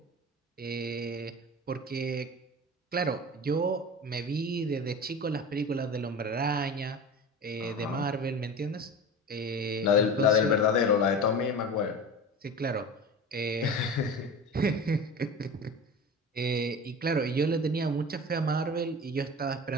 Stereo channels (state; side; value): normal; both; correlation 0.32